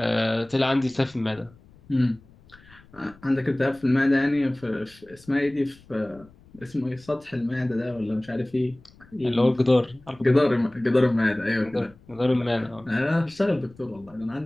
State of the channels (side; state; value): left; noise; rumble, 26 dB below the sound